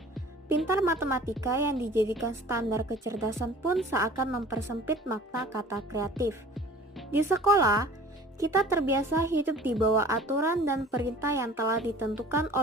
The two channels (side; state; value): both; normal; correlation 0.45